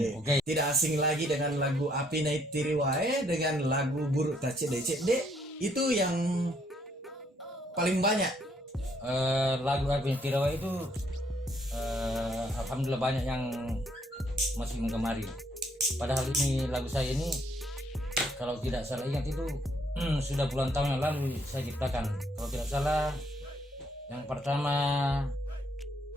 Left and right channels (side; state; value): both; normal; correlation 0.69